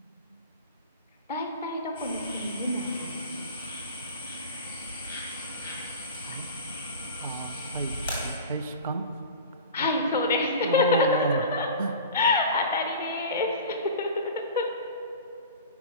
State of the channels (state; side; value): inverted; both; correlation -0.35